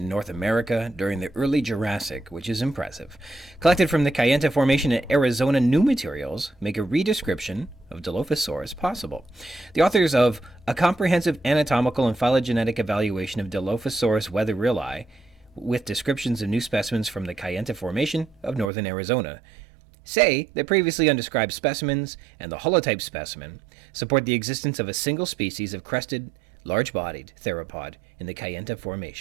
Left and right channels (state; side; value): drops out; left; at 18.7 s